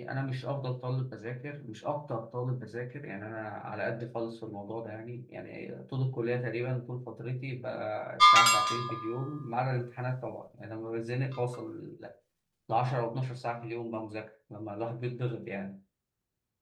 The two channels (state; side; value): identical; both; correlation 1.00